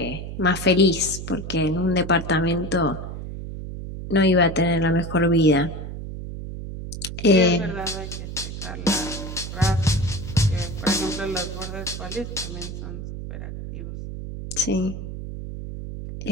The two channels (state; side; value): noise; right; hum, 8 dB below the sound